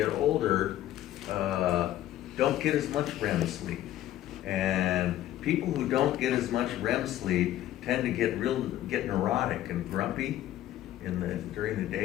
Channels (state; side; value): quieter; right; 13.3 dB